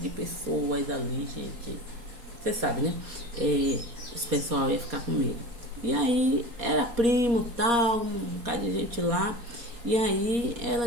pessoas ali, gente, você sabe, né? Esse pessoal ia ficar com medo. E aí era primo, tal, um bocado de gente lá. E aí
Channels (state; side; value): late; left; 4.2 ms